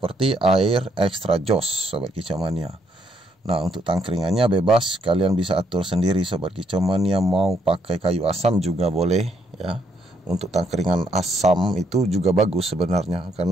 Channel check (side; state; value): both; normal; correlation 0.72